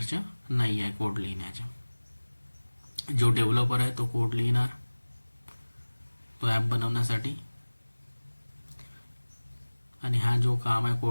नाही आहे कोड लिहिण्याचं. जो डेव्हलपर आहे तो कोड लिहिणार तो ॲप बनवण्यासाठी आणि हा जो काम आहे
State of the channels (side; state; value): both; inverted; correlation -1.00